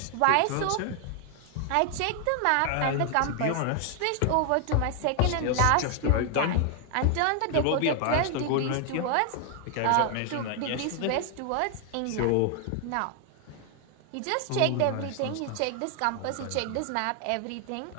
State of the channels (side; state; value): both; different; correlation 0.00